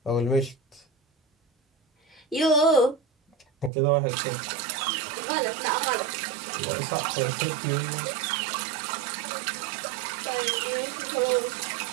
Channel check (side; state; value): left; drops out; at 3.7 s